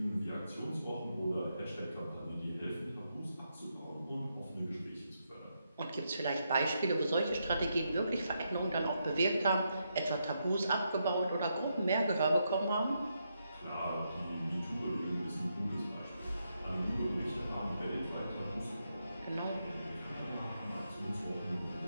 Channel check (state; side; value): inverted; both; correlation -0.81